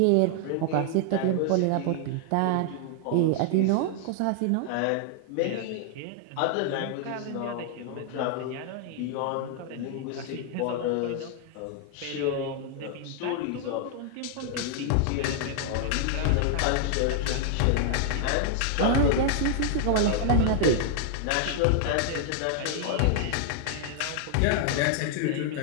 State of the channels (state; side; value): different; both; correlation 0.00